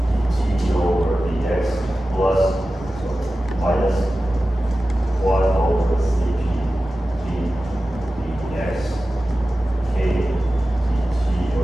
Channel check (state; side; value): normal; both; correlation 0.95